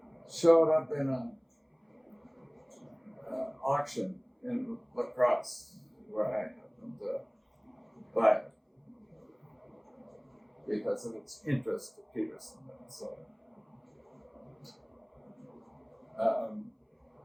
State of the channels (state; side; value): identical; both; correlation 1.00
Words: showed up in an auction in La Crosse, where I happened to buy it because of its interest to Peterson. So,